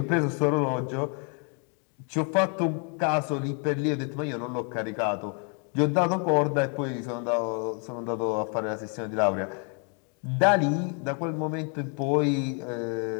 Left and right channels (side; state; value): right; quieter; 39.1 dB